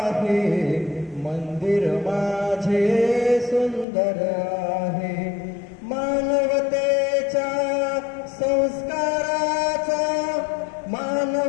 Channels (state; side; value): drops out; right; at 3.9 s